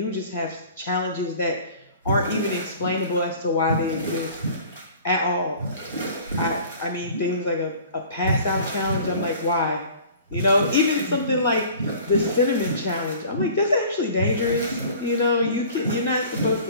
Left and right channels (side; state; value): both; inverted; correlation -0.46